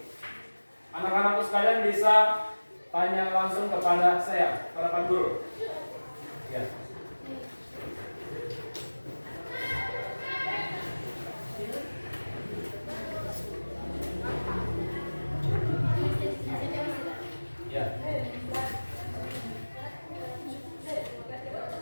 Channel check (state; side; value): inverted; both; correlation -1.00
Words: anak-anakku sekalian bisa tanya langsung kepada saya, kepada Pak Guru. Ya. Ya.